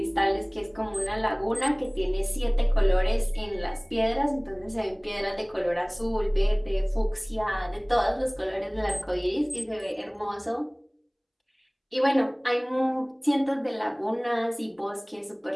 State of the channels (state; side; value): identical; both; correlation 1.00